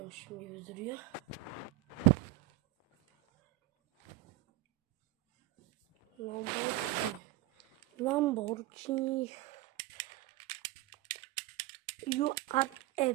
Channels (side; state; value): left; quieter; 17.1 dB